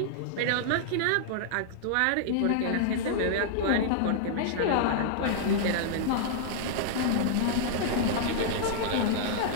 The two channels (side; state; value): both; different; correlation -0.01